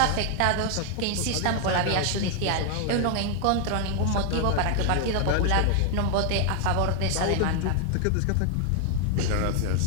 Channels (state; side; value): different; both; correlation 0.00